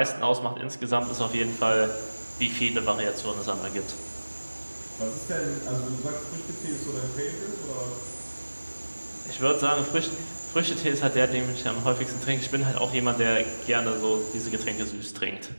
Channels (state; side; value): inverted; both; correlation -1.00